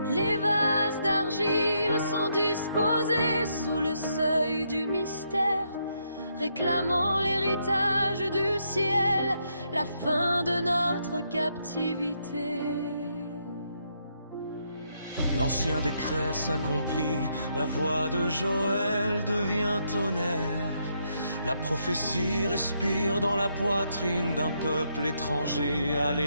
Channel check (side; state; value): both; inverted; correlation -0.76